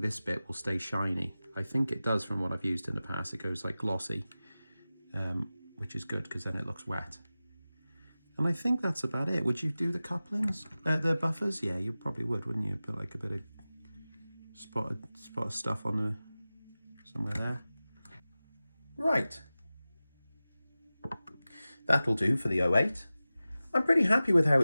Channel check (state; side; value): inverted; both; correlation -0.96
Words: bit will stay shiny. I think it does from what I've used in the past. It goes like glossy, which is good because then it looks wet. And I think that's about it. Would you do the couplings, the buffers? Yeah, you probably would, wouldn't you? Put like a bit of spot of stuff on the somewhere there. Right. That'll do for the 08. I'm pretty happy with how